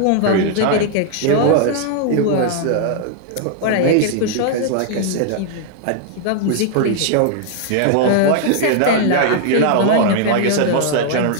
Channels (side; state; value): both; different; correlation 0.00